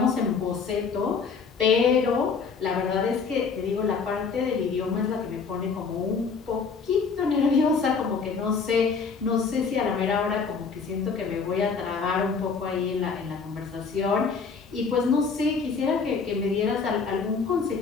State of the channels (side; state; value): right; quieter; 5.3 dB